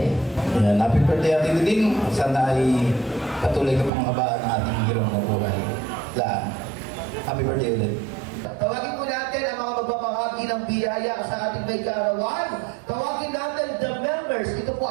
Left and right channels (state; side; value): drops out; left; at 3.9 s